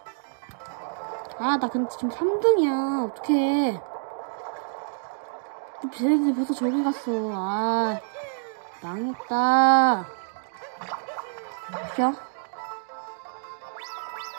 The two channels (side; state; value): left; silent; digital silence